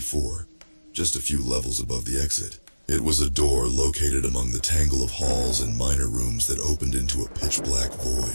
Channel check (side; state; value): both; inverted; correlation -1.00